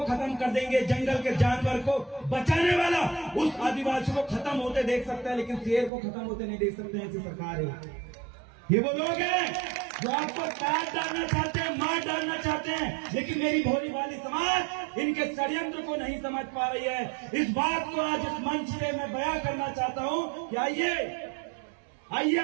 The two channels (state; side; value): drops out; left; at 5.9 s